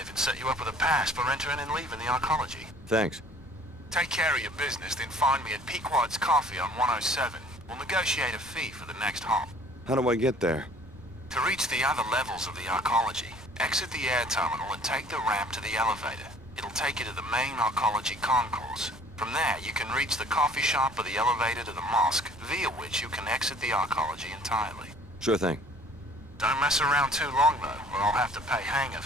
even set you up with a pass for entering and leaving the Archology. Thanks. Take care of your business, then find me at Pequod's Coffee on 107. We'll negotiate a fee for the next hop. How do I get there? To reach the other levels of the Archology, exit the air terminal and take the ramp to the elevator. It'll take you to the main Archology concourse. From there, you can reach the coffee shop or the elevator to the mosque, via which you can exit the Archology entirely. Sure thing. Don't mess around too long, though, or I'll have to pay hangar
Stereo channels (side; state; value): both; normal; correlation 0.54